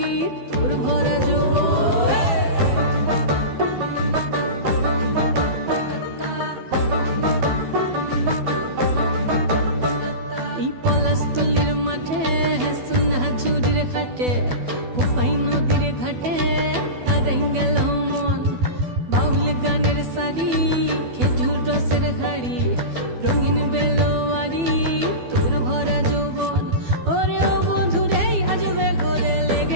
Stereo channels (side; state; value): left; late; 12 ms